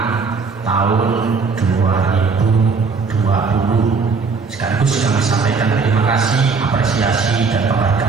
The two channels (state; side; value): quieter; left; 4.8 dB